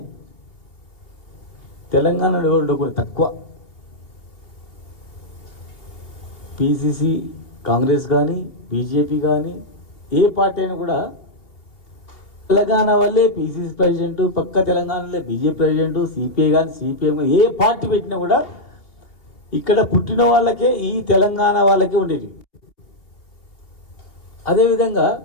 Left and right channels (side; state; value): right; late; 2.8 ms